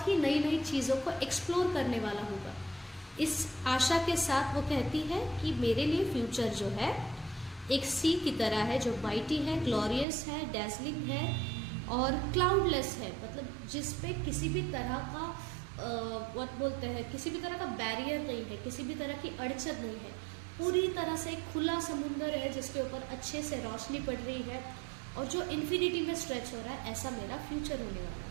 ही नई नई चीज़ों को एक्सप्लोर करने वाला होगा। इस आशा के साथ वो कहती है कि मेरे लिए फ्यूचर जो है एक सी की तरह है जो माइटी है, ग्लोरियस है, डैज़लिंग है और क्लाउडलेस है, मतलब जिस पे किसी भी तरह का व्हाट बोलते हैं, किसी भी तरह का बैरियर नहीं है, किसी भी तरह की अड़चन नहीं है, पूरी तरह से एक खुला समुंदर है जिसके ऊपर अच्छे से रोशनी पड़ रही है और जो इन्फिनिटी में स्ट्रेच हो रहा है, ऐसा मेरा फ्यूचर होने वाला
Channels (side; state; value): left; drops out; at 10.1 s